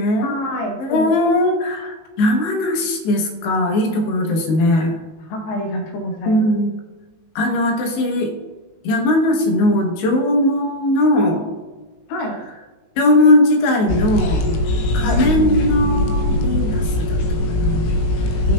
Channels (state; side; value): late; right; 19 ms